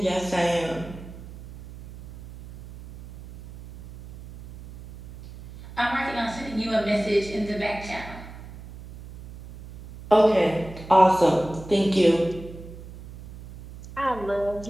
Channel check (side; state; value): right; noise; hum, 16 dB below the sound